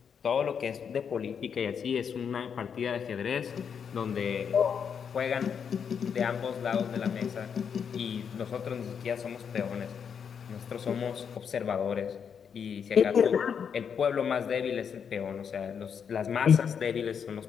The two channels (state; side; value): quieter; right; 7.2 dB